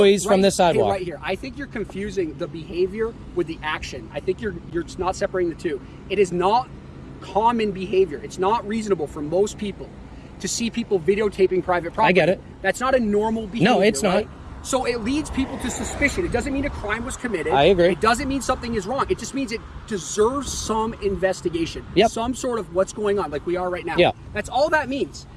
from this sidewalk. Right here. I think you're confusing the behavior with the action. I think you're not separating the two. It is not common behavior. It's not reasonable for most people to see people videotaping private property. I get it. That's not a normal behavior. No, it's not. Right? So it leads people to suspicion. It doesn't mean a crime was committed. I agree. It doesn't mean something is wrong. It just means it deserves some investigation. Yep. Some sort of what's going on, like we are right now. Yeah. That's all that means.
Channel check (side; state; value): both; identical; correlation 1.00